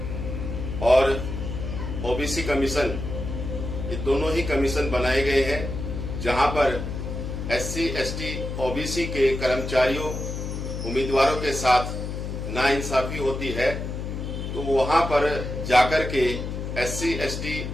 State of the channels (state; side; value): noise; left; hum, 5 dB below the sound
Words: और OBC कमीशन, ये दोनों ही कमीशन बनाए गए हैं, जहां पर SC/ST OBC के कर्मचारियों, उम्मीदवारों के साथ नाइंसाफी होती है, तो वहां पर जाकर के SC/ST